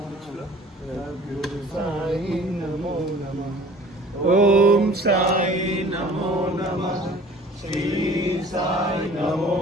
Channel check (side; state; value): both; normal; correlation 0.48